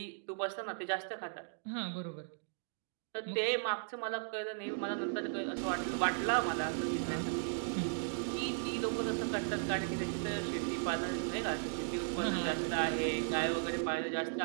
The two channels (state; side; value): silent; left; digital silence